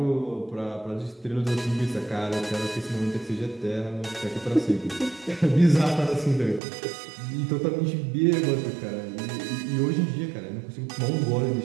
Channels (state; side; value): drops out; left; at 6.6 s